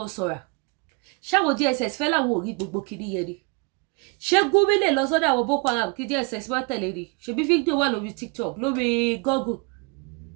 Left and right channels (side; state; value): left; quieter; 31.1 dB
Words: ṣáwọn DSS fẹ́ láwọn ò rí gbogbo kìíní yẹn ni ṣé Gumi lè lọ sọ́dọ̀ àwọn Boko Haram kí DSS má tẹ̀lé ni ṣebí fídíò wà lórí TikTok lórí Google